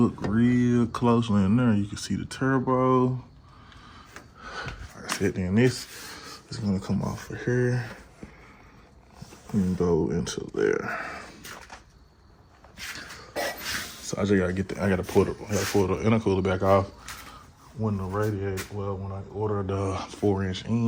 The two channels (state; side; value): identical; both; correlation 1.00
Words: real closely in there, you can see the turbo. Like I said, then this is gonna come off of here and go into there. So I just gotta get I gotta pull the intercooler back off when the radiator, well, when I ordered the 4-inch